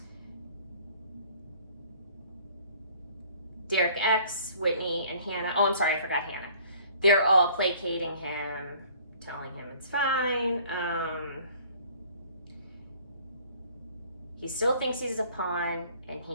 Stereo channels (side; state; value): both; inverted; correlation -0.54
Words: Derek X, Whitney, and Hannah, oh, I'm sorry, I forgot Hannah. They're all placating him, telling him it's fine. He still thinks he's a pawn, and